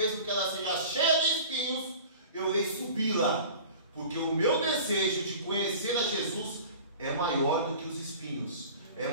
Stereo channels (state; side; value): inverted; both; correlation -0.41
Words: que ela seja cheia de espinhos, eu irei subi-la. Porque o meu desejo de conhecer a Jesus é maior do que os espinhos, é